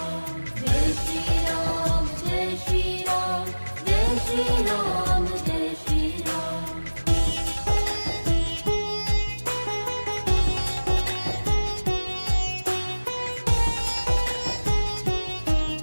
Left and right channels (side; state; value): both; inverted; correlation -1.00